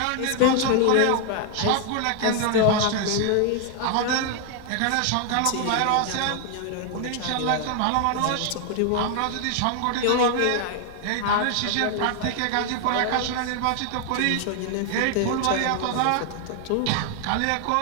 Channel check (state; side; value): different; both; correlation 0.00